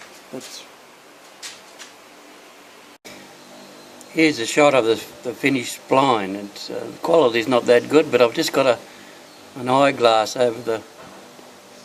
here's a shot of the finished spline. It's the quality's not that good, but I've just got an eyeglass over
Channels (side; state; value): both; identical; correlation 1.00